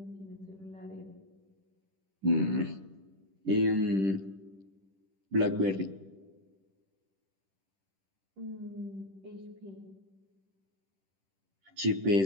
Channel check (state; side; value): late; left; 10 ms